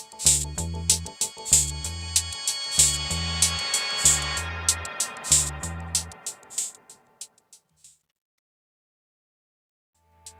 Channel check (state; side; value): identical; both; correlation 1.00